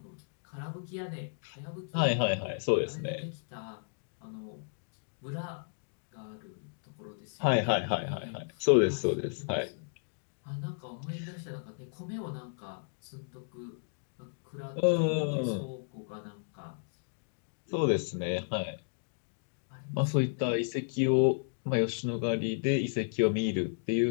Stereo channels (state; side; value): silent; right; digital silence